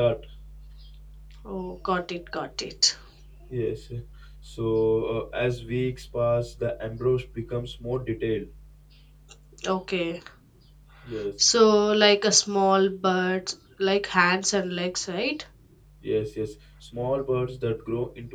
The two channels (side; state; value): both; identical; correlation 1.00